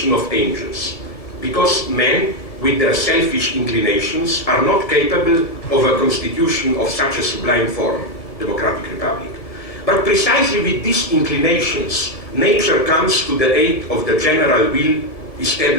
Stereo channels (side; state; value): right; late; 1.7 ms